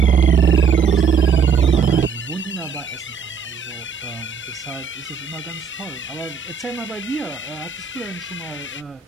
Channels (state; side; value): quieter; left; 6.4 dB